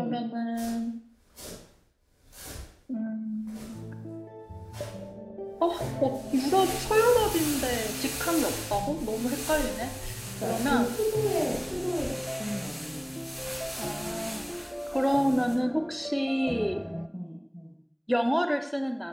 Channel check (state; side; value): identical; both; correlation 1.00